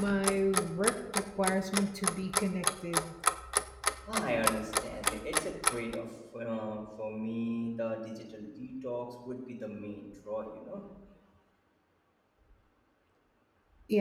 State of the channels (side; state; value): both; identical; correlation 1.00